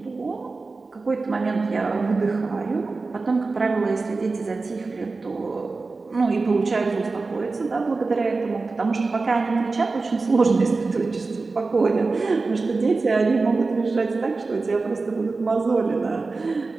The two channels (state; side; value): quieter; left; 3.8 dB